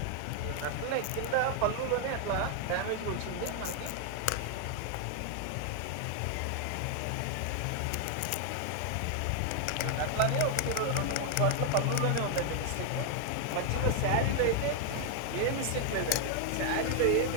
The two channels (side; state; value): both; different; correlation 0.00